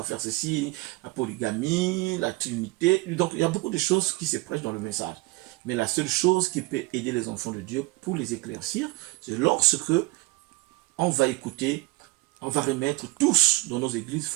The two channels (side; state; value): left; quieter; 22.3 dB